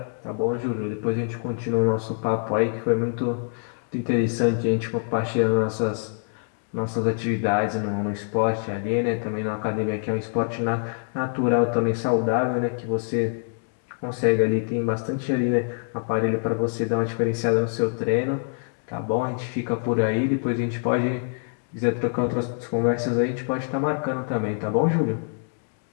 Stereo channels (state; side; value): silent; right; 62 dB below the other